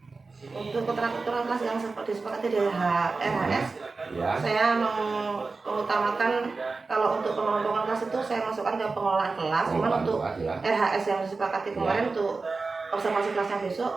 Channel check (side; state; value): left; quieter; 4.0 dB